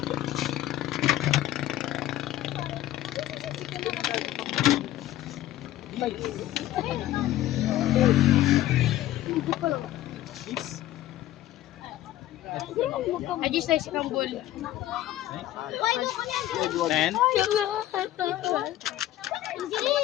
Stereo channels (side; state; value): right; quieter; 14.0 dB